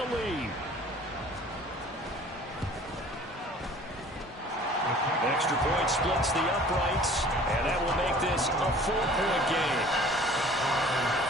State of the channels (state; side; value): normal; both; correlation 0.48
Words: lead. Extra point splits the uprights, and that will make this a 4-point game.